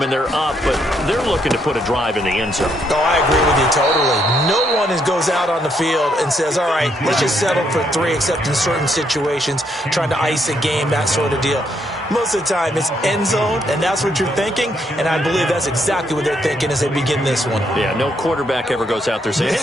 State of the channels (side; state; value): both; normal; correlation 0.74